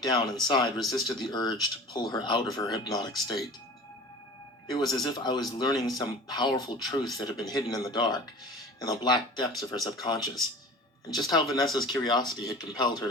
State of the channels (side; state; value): both; normal; correlation 0.40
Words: down inside resisted the urge to pull her out of her hypnotic state. It was as if I was learning some powerful truth that had been hidden in the dark, in the black depths of her subconscious, and just how Vanessa's curiosity had compelled her